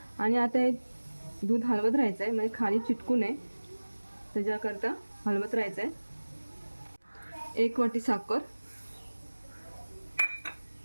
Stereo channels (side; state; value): both; inverted; correlation -1.00